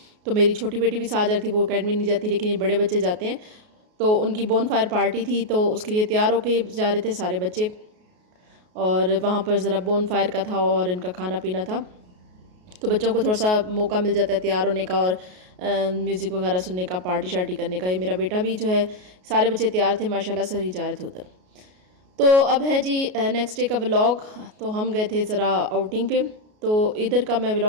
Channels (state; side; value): late; left; 33 ms